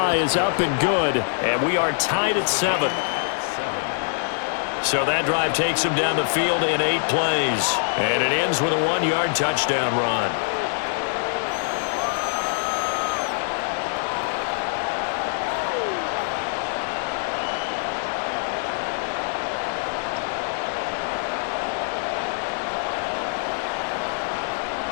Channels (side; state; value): right; silent; 63 dB below the other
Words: is up and good, and we are tied at 7. So that drive takes him down the field in 8 plays, and it ends with a 1-yard touchdown run.